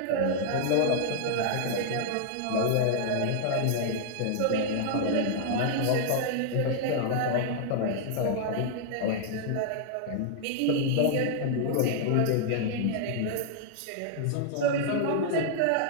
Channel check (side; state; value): both; different; correlation -0.01